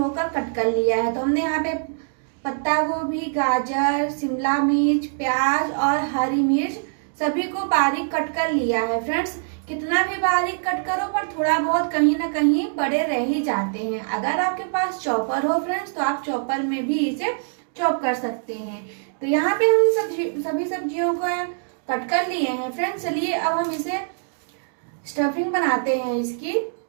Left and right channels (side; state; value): left; silent; digital silence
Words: कट कर लिया है। तो हमने यहाँ पे पत्ता गोभी, गाजर, शिमला मिर्च, प्याज और हरी मिर्च सभी को बारीक कट कर लिया है। फ्रेंड्स, कितना भी बारीक कट करो पर थोड़ा बहुत कहीं ना कहीं बड़े रह ही जाते हैं। अगर आपके पास चॉपर हो फ्रेंड्स तो आप चॉपर में भी इसे चॉप कर सकते हैं। तो यहाँ पे हम सभी सब्जियों को कट कर लिए हैं। फ्रेंड्स, चलिए अब हम इसे स्टफिंग बनाते हैं इसकी।